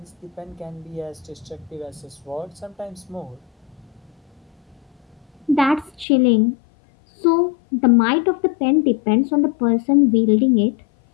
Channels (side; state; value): right; drops out; at 6.1 s